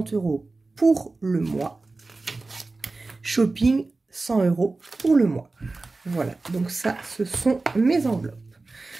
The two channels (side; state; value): left; quieter; 3.5 dB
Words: € pour le mois. Shopping, 100 € pour le mois. Voilà, donc ça, ce sont mes enveloppes.